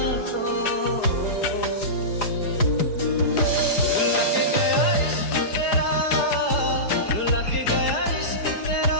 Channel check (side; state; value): right; late; 4.9 ms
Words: तो। रुला के गया इश्क तेरा, रुला के गया इश्क